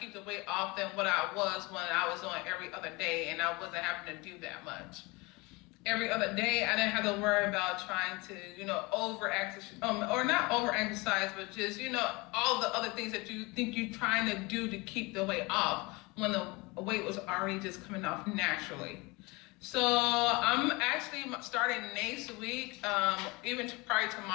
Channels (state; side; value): quieter; right; 25.3 dB